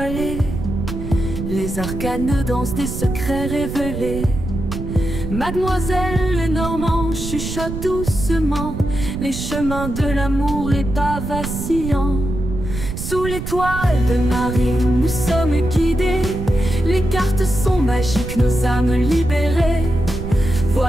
Les arcanes dansent des secrets révélés. Mademoiselle Lenormand chuchote doucement les chemins de l'amour, les pas vacillants. Sous l'étoile de Marie, nous sommes guidés. Les cartes sont magiques, nos âmes libérées.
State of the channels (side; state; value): right; noise; rumble, 6 dB below the sound